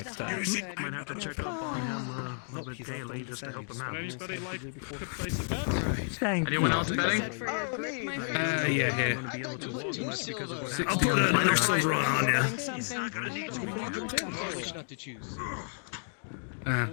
time. Might have to check up on him a little bit daily just to help him out. Anybody like to place a bet? Thank Anyone you. else betting? Yeah, here. I'll put another silver on ya.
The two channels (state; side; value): silent; right; digital silence